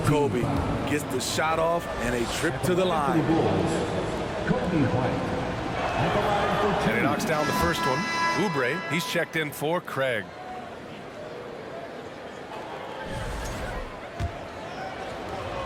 Kobe. Gets the shot off and a trip to the line. Kobe White. At the line for two. And he knocks down the first one. Oubre, he's checked in for Craig.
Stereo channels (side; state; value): both; identical; correlation 1.00